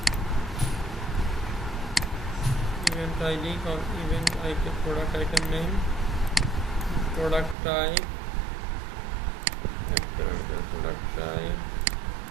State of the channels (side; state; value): left; drops out; at 7.6 s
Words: event ID, event item, product item name, product type, product type,